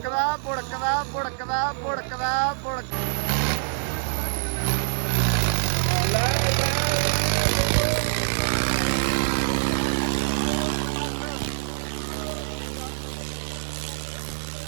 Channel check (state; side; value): silent; left; digital silence